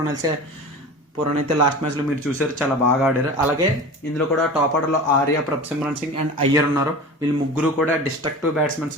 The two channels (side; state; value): both; normal; correlation 0.34